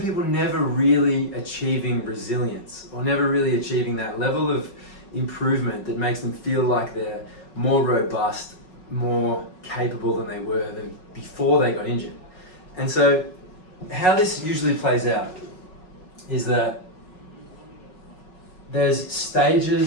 never really achieving resilience or never really achieving that level of improvement that makes them feel like they're more robust, more capable than they were before they got injured. And so how this usually plays out is that there's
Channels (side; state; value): right; late; 5.4 ms